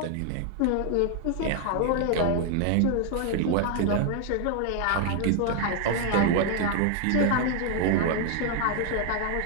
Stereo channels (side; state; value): both; different; correlation 0.00